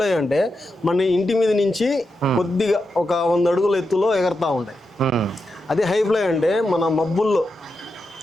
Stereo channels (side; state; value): both; normal; correlation 0.88